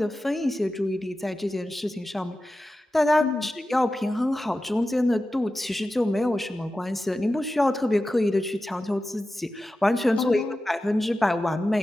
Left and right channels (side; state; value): both; normal; correlation 0.93